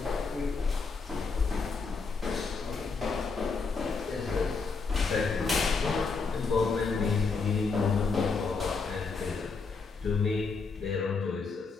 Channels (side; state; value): right; quieter; 4.6 dB